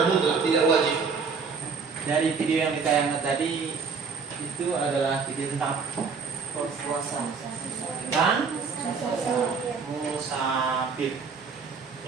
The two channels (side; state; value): left; quieter; 5.3 dB